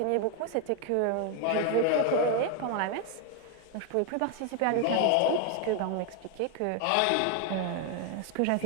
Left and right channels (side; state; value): both; different; correlation 0.01